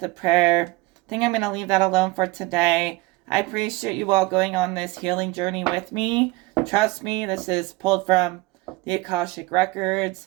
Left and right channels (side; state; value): left; quieter; 21.7 dB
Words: a prayer. I think I'm going to leave that alone for today. I appreciate you all going on this healing journey with me. Trust me, this is pulled from the Akashic